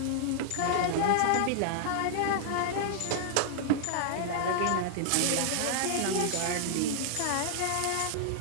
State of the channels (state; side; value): different; both; correlation -0.01